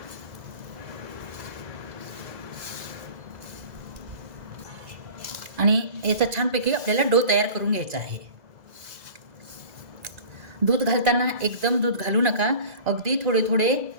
आणि याचा छानपैकी आपल्याला डो तयार करून घ्यायचा आहे. दूध घालताना एकदम दूध घालू नका, अगदी थोडे थोडे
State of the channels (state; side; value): late; left; 2.0 ms